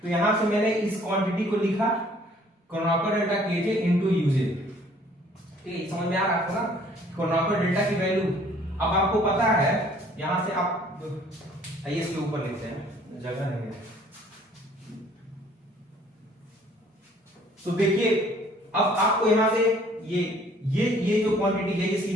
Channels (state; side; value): normal; both; correlation 0.57